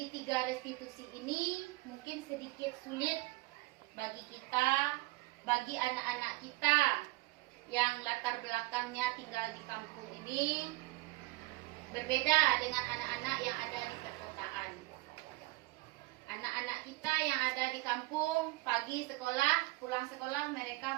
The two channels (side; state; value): left; quieter; 22.2 dB